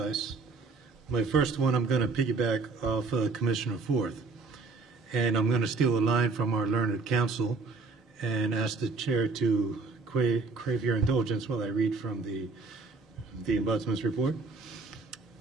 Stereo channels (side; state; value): left; quieter; 4.1 dB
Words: My first one, I'm going to piggyback off Commissioner Forth. And I'm going to steal a line from our learned counsel and ask the chair to crave your indulgence while I read from the Ombudsman's report.